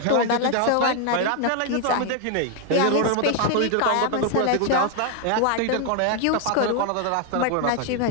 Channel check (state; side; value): different; both; correlation 0.00